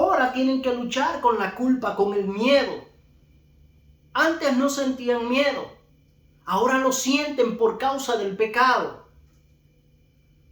tienen que luchar con la culpa, con el miedo. Antes no sentían miedo. Ahora lo sienten por causa del pecado.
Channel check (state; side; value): identical; both; correlation 1.00